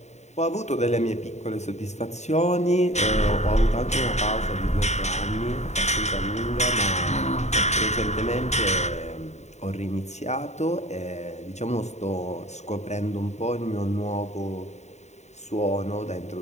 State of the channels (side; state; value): right; late; 0.33 ms